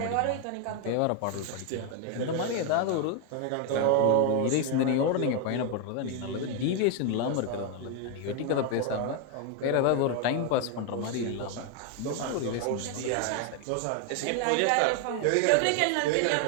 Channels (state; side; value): different; both; correlation 0.01